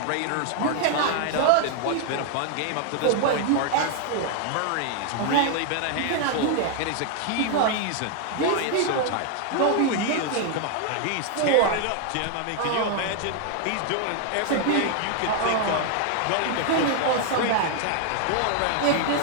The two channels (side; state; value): both; different; correlation 0.00